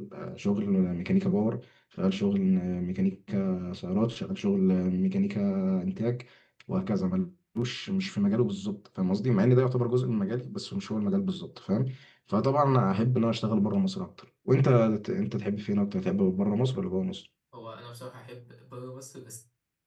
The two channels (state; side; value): identical; both; correlation 1.00